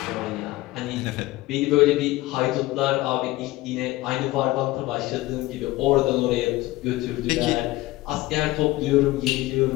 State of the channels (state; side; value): quieter; right; 18.4 dB